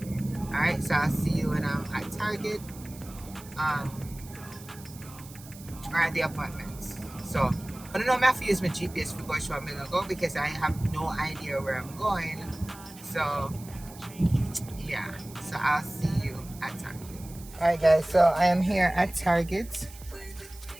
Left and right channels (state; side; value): noise; right; hiss, 19 dB below the sound